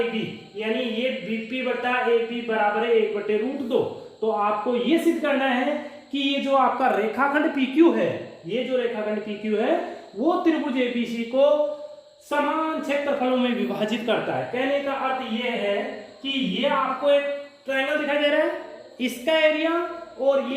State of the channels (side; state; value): both; identical; correlation 1.00